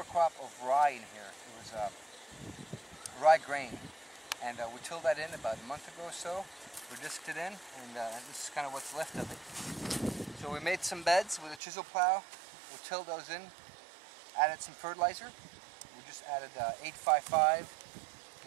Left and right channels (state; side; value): drops out; left; at 11.6 s